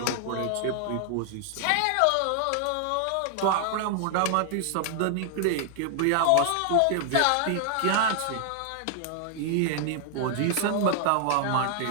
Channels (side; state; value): both; different; correlation 0.00